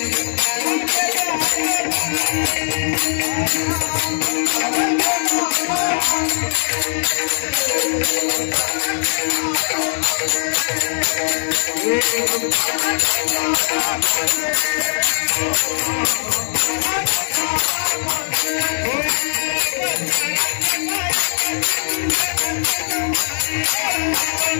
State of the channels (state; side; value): silent; right; digital silence